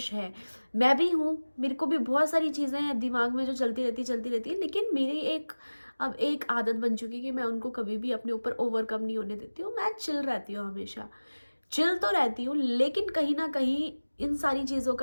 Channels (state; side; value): inverted; both; correlation -1.00